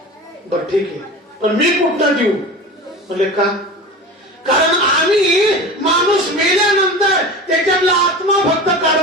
बर ठीक आहे, पण मी कुठं देऊ? म्हणले का? कारण आम्ही माणूस मेल्यानंतर त्याच्यातला आत्मा फक्त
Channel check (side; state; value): both; normal; correlation 0.32